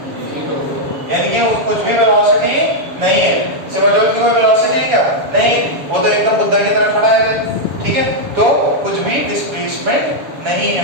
यानी कि कुछ भी वेलोसिटी नहीं है, सिमरजोत की कोई वेलोसिटी है क्या, नहीं, वो तो एकदम बुद्धा की तरह खड़ा है, ठीक है, तो कुछ भी डिस्प्लेसमेंट नहीं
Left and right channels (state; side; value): late; left; 7.1 ms